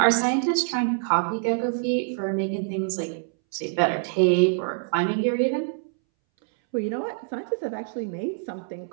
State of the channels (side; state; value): left; silent; 62 dB below the other